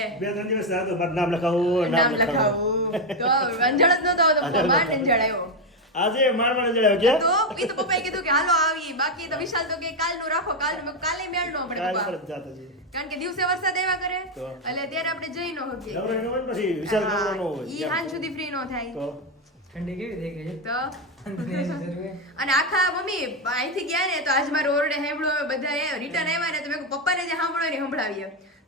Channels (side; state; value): both; normal; correlation 0.07